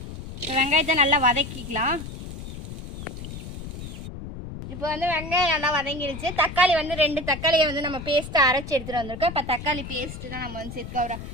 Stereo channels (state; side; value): noise; left; rumble, 10 dB below the sound